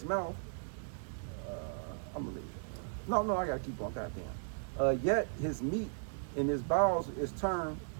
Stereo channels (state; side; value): silent; left; digital silence